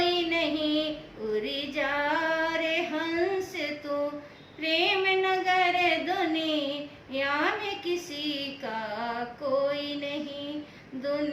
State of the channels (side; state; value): both; identical; correlation 1.00